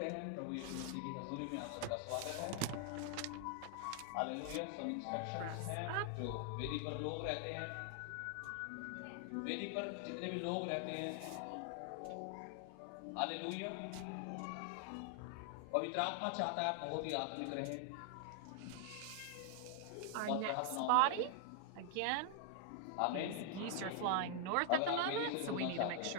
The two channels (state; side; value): different; both; correlation 0.00